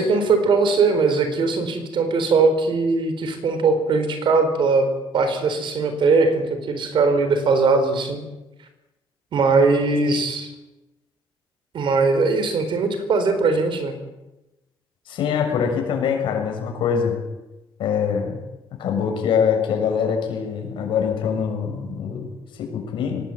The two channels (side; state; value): both; normal; correlation 0.55